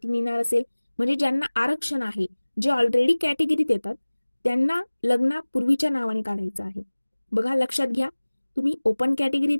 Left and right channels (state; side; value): inverted; both; correlation -1.00